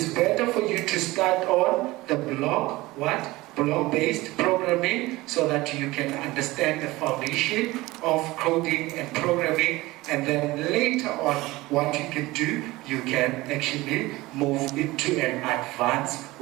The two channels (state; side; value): quieter; left; 19.8 dB